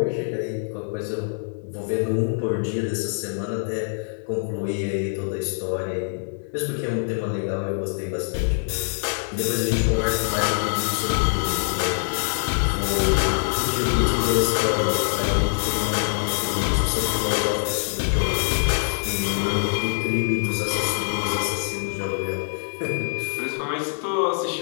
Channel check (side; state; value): right; silent; digital silence